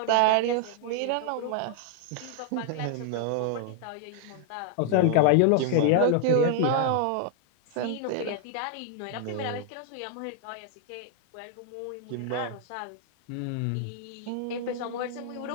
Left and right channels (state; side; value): different; both; correlation 0.00